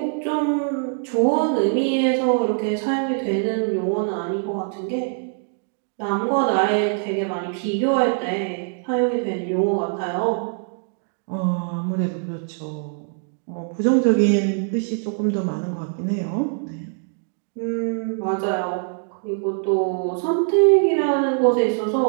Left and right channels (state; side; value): silent; left; 58 dB below the other